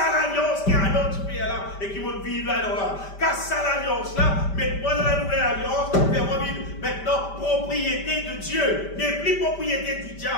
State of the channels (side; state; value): right; late; 5.1 ms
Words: qui est à notre pays là et qui va vivre là. Casse l'alliance là, mets-moi dans la nouvelle alliance, fais-moi vivre maintenant propriété de Dieu, n'est plus propriété du